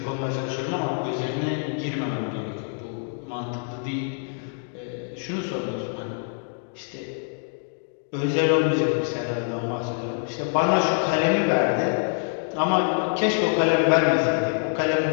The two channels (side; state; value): right; silent; 61 dB below the other